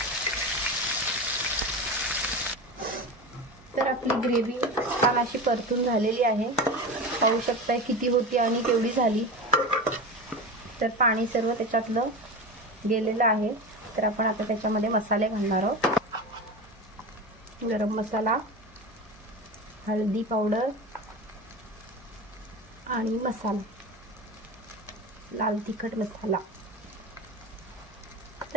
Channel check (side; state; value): both; normal; correlation 0.26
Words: तर आपली ग्रेव्ही छान अशी परतून झालेली आहे, पाहू शकता किती होती आणि केवढी झाली। तर पाणी सर्व त्याच्यातलं गेलेलं आहे। तर आपण आता त्याच्यामध्ये मसाले घालणार आहोत। गरम मसाला, हळदी पावडर आणि मसाला, लाल तिखट मसाला।